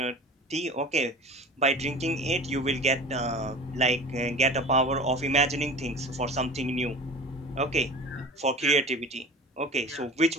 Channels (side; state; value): both; normal; correlation 0.37